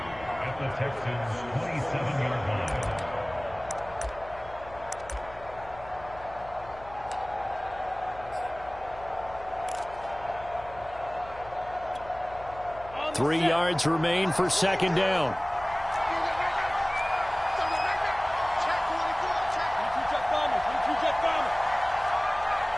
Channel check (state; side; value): noise; left; hum, 19 dB below the sound